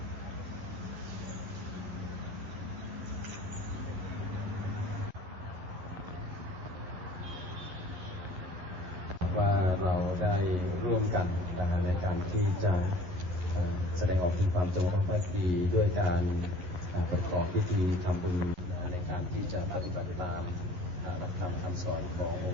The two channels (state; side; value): late; left; 11 ms